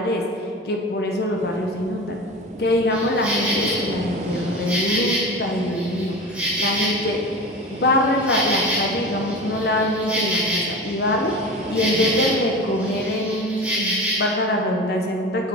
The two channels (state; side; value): normal; both; correlation 0.31